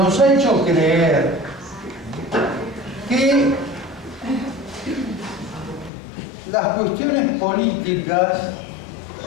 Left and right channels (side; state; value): right; drops out; at 5.9 s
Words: ha hecho creer que las cuestiones políticas